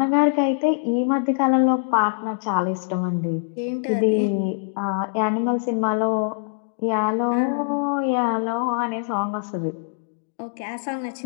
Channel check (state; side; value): silent; right; digital silence